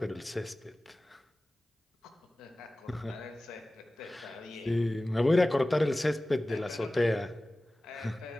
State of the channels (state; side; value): normal; both; correlation 0.97